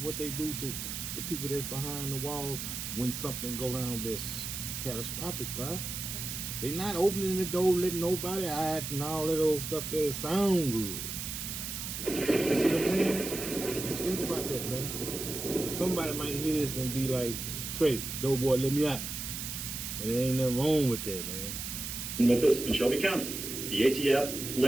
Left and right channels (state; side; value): noise; right; hiss, 5 dB below the sound